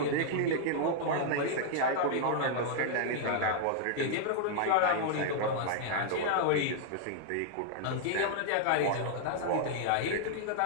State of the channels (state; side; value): different; both; correlation -0.01